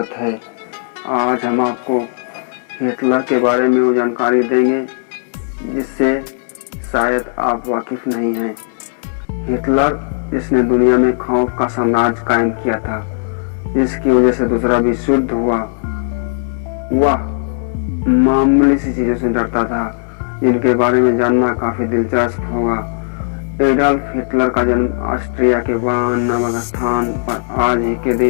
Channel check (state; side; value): silent; right; 69 dB below the other